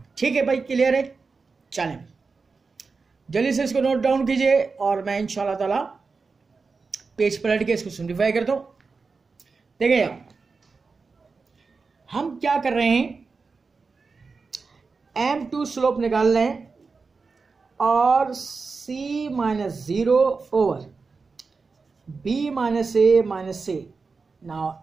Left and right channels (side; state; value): left; quieter; 4.5 dB